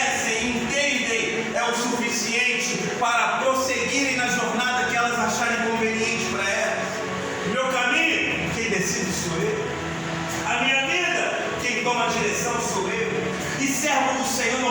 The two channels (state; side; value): identical; both; correlation 1.00